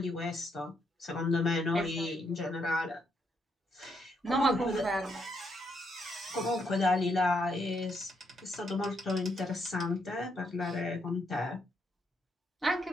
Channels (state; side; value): normal; both; correlation 0.77